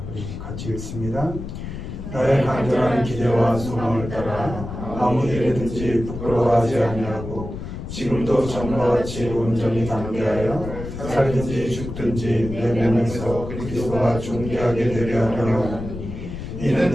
우리 같이 읽습니다. 나의 간절한 기대와 소망을 따라 아무 일에든지 부끄러워하지 아니하고 지금도 전과 같이 온전히 담대하여 살든지 죽든지 내 몸에서 그리스도가 존귀하게 되려 하려니 이는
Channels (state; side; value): noise; left; rumble, 8 dB below the sound